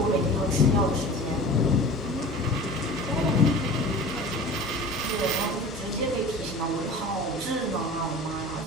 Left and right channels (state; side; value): normal; both; correlation 0.39